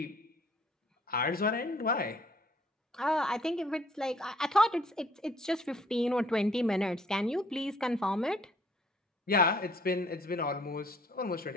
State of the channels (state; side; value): normal; both; correlation 0.60